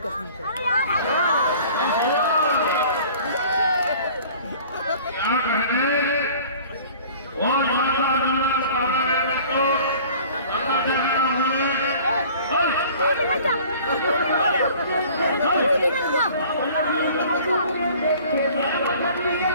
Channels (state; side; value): inverted; both; correlation -0.48